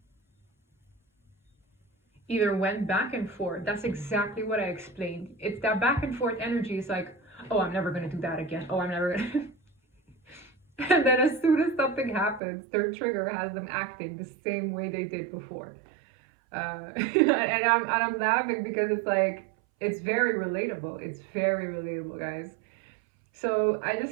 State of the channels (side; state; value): left; drops out; at 12.4 s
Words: either went back and forth. That's exactly what I explained. It's that back and forth energy is like, oh, I'm never going to do that again. Oh, I'm never going to. And then as soon as something happens, their trigger has them acting the same way they did before. And I'm laughing because it's like, it's very relatable. It's very relatable, guys. So I